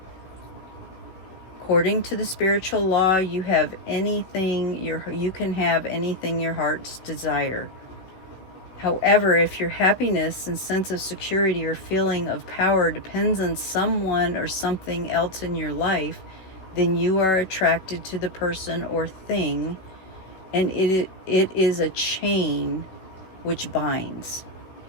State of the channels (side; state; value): right; late; 16 ms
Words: According to the spiritual law, you have anything you can have anything your heart's desire. However, if your happiness and sense of security or feeling of power depends on someone or something else in your life, then you are attracted to the person or thing, and it is a chain which binds.